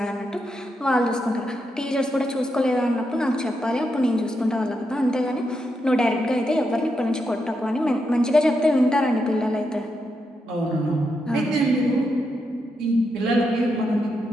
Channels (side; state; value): both; normal; correlation 0.83